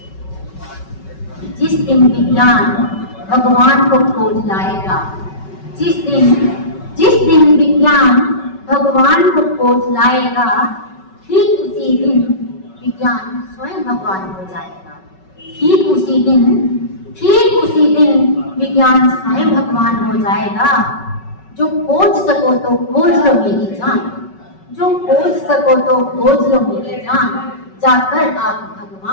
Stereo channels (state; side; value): late; right; 5.3 ms